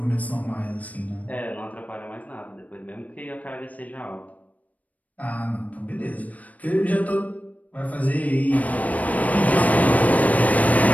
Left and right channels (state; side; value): late; right; 0.071 ms